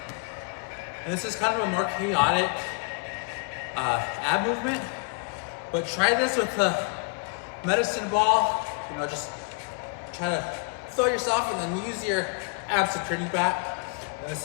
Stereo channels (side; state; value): right; quieter; 34.5 dB